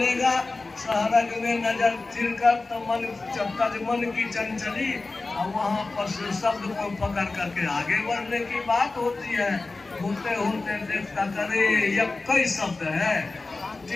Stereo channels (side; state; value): right; quieter; 3.5 dB